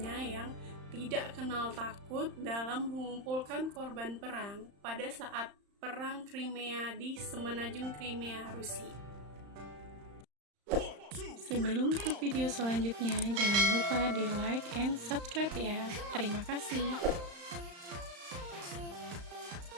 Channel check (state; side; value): late; left; 35 ms